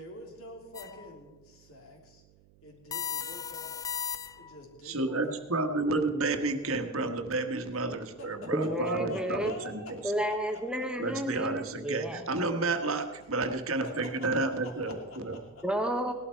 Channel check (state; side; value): noise; right; hum, 28 dB below the sound